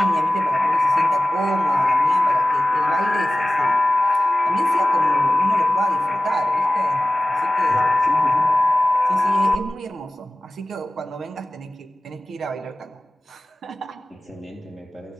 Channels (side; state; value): both; normal; correlation 0.95